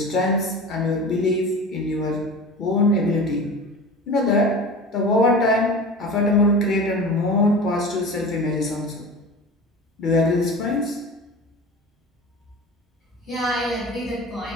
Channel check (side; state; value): both; normal; correlation 0.34